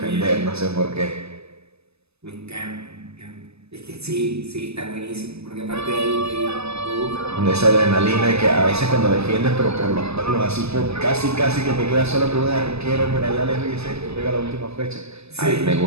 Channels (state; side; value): late; left; 0.79 ms